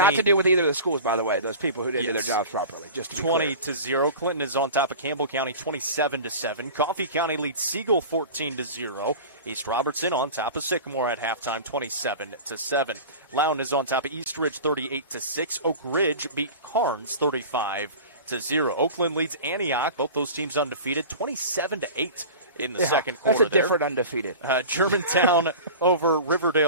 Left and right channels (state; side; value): inverted; both; correlation -0.35